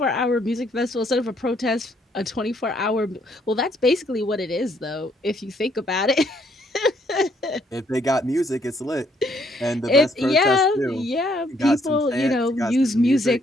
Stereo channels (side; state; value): both; normal; correlation 0.69